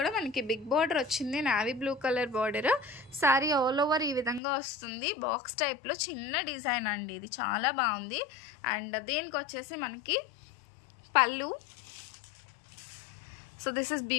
మనకి బిగ్ బార్డర్ వచ్చింది, navy blue colour border. Sari all over ఈ విధంగా వస్తుంది. బాక్స్ టైప్లో చిన్న డిజైన్ అండి, ఇది చాలా బాగుంది. అండ్ దీనికి వచ్చేసి మనకి పళ్ళు. సో దిస్ ఇస్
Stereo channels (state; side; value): drops out; right; at 4.4 s